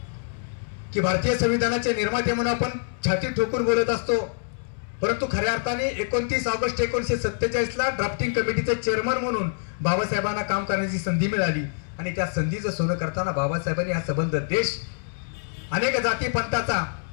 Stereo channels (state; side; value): silent; right; 61 dB below the other